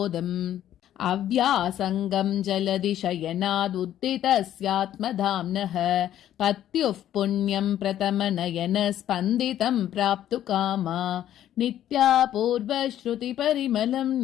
अव्यासङ्गं जलदिशयनादुद्दितस्यात्मधाम्नः पत्युः पुण्यं प्रथमनयन स्पन्दितं प्राप्तु कामा नित्या पूर्वश्रुतिपरिमलं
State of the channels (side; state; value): right; quieter; 11.6 dB